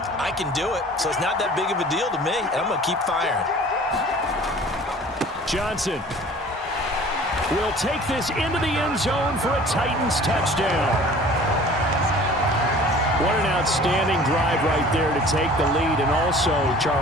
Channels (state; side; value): normal; both; correlation 0.47